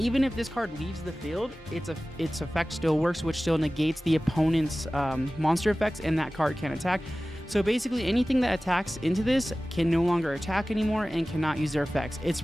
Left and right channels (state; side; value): normal; both; correlation 0.97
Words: if this card leaves the field, its effect still works, which still negates the opponent's monster effects, and that card can attack. So basically anything that attacks into this can no longer attack anymore and cannot use their effects. It's